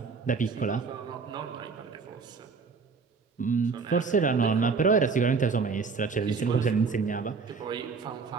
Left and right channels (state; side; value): quieter; left; 4.9 dB